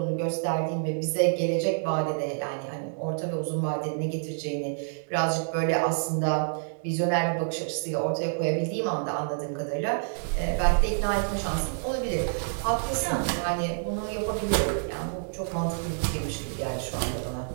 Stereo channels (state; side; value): silent; left; digital silence